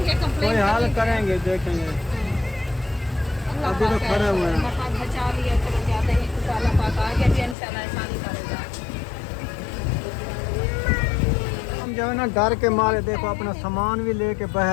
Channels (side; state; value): right; drops out; at 7.6 s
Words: कंप्लेंट कोई हाल करेंगे देखेंगे अभी तो खड़े हुए हैं बचा लिया चलो जाते हैं तो अल्लाह पाक आगे भी इंशाल्लाह आसानी करेगा। हम जो है ना डर के मारे देखो अपना सामान भी लेके